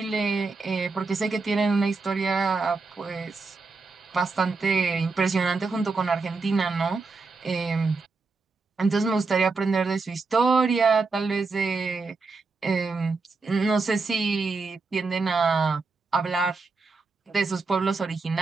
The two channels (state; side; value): quieter; left; 4.1 dB